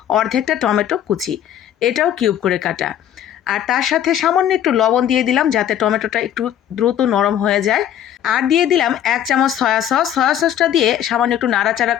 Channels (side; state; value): right; quieter; 10.5 dB